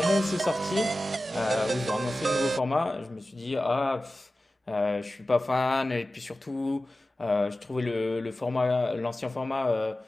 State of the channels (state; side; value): normal; both; correlation 0.95